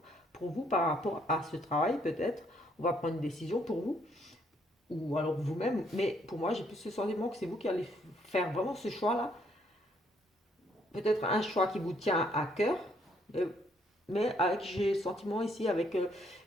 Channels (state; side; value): normal; both; correlation 0.69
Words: vous par rapport à ce travail peut-être. On va prendre une décision pour vous ou alors vous-même, mais pour moi j'ai plus ce sentiment que c'est vous qui allez faire vraiment ce choix-là, peut-être un choix qui vous tient à cœur, euh, mais avec, j'ai le sentiment ici avec